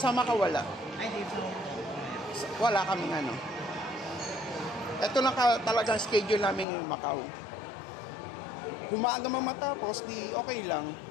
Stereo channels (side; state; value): right; drops out; at 6.7 s